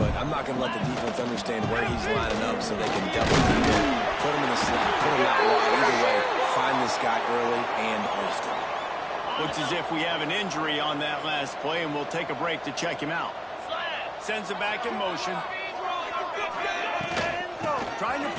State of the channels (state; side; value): identical; both; correlation 1.00